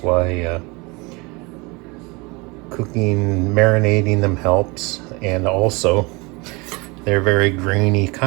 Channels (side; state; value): left; quieter; 26.5 dB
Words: why cooking, marinating them helps. And also, they're very grainy,